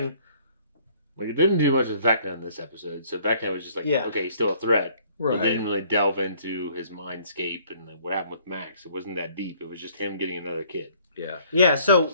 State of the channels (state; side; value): inverted; both; correlation -0.60